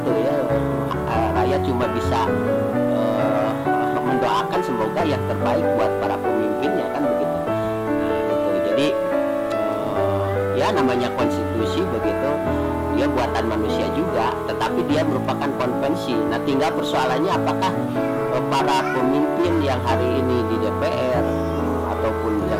ya. Rakyat cuma bisa mendoakan semoga yang terbaik buat para pemimpinnya kan begitu. Nah itu jadi ya namanya konstitusi begitu, dia buatan manusia juga, tetapi dia merupakan konvensi. Nah tinggal persoalannya apakah para pemimpin yang hari ini di DPR ataupun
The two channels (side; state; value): both; identical; correlation 1.00